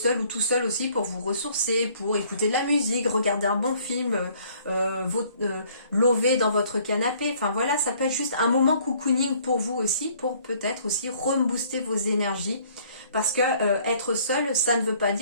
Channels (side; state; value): both; inverted; correlation -0.59